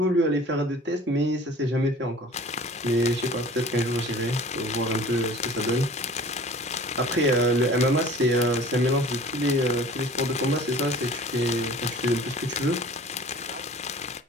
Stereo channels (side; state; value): both; normal; correlation 0.45